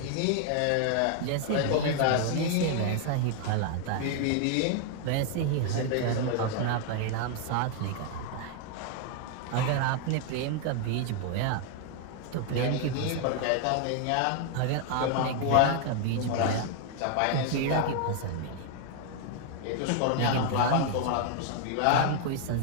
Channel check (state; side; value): different; both; correlation 0.00